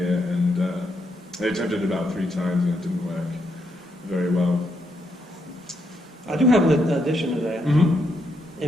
and they attempted it about 3 times, and it didn't work very well. I do have an addition to that. Mm-hmm.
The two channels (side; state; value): both; normal; correlation 0.78